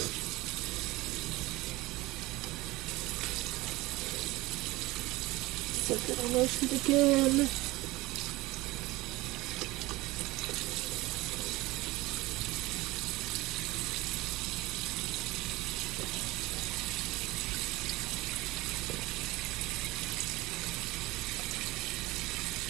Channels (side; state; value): left; quieter; 20.3 dB